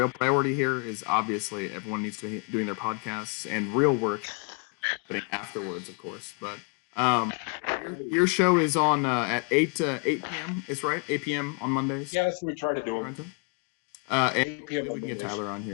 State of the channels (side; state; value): right; quieter; 37.7 dB